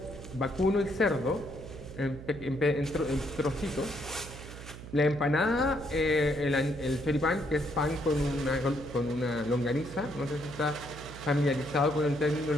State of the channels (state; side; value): noise; right; hum, 13 dB below the sound